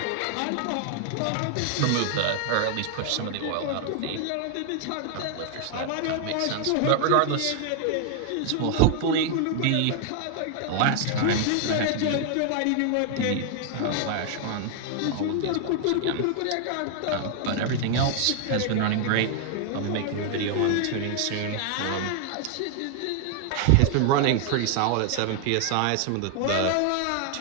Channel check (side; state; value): both; different; correlation 0.00